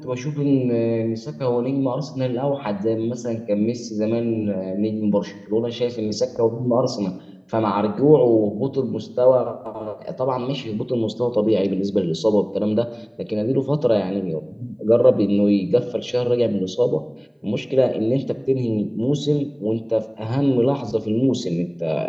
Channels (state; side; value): identical; both; correlation 1.00